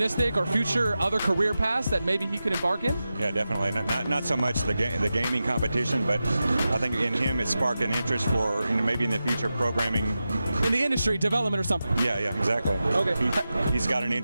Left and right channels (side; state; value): both; inverted; correlation -0.92